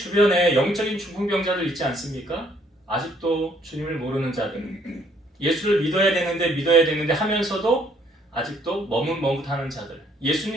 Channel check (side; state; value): both; normal; correlation 0.65